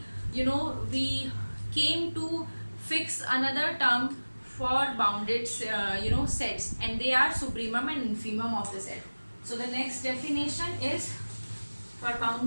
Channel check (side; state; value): both; inverted; correlation -1.00